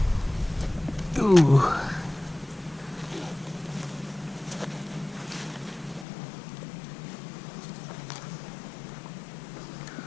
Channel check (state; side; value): drops out; right; at 6.1 s